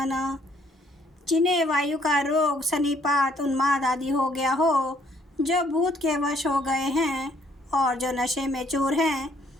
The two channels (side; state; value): both; normal; correlation 0.65